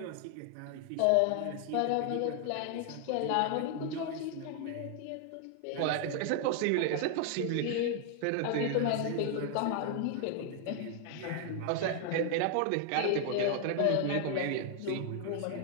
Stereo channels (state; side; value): different; both; correlation 0.00